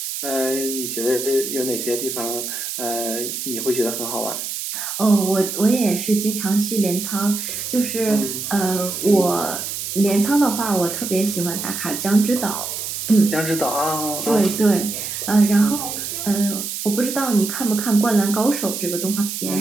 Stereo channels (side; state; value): right; noise; hiss, 5 dB below the sound